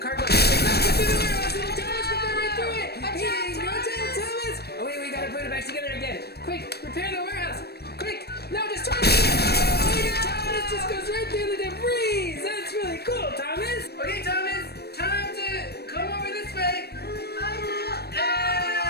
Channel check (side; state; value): right; late; 0.47 ms